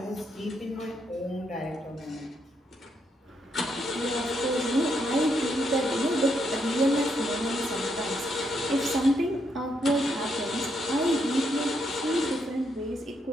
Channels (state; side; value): normal; both; correlation 0.77